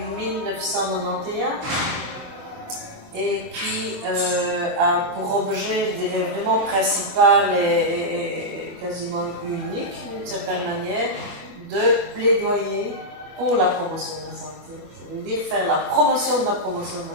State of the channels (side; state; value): left; late; 25 ms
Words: et qui a pour objet vraiment principal et quasiment unique, d'une certaine manière, de plaidoyer pour la promotion de la santé. Ça veut dire faire la promotion de la promotion de